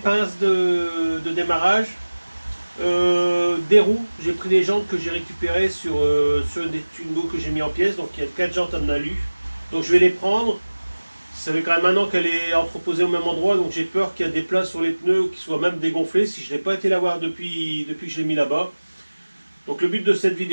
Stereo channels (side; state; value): both; inverted; correlation -1.00